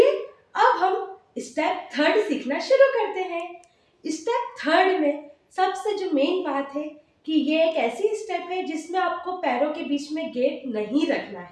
अब हम स्टेप थर्ड सीखना शुरू करते हैं। स्टेप थर्ड में सबसे जो मेन बात है कि ये एक ऐसी स्टेप है जिसमें आपको पैरों के बीच में गैप नहीं रखना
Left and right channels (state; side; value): identical; both; correlation 1.00